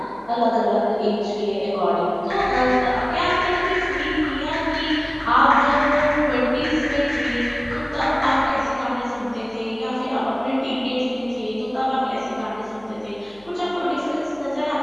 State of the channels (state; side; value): noise; left; hum, 28 dB below the sound